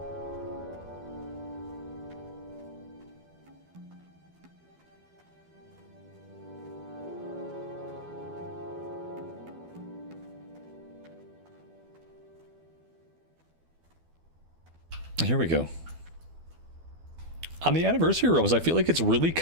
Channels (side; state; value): left; late; 12 ms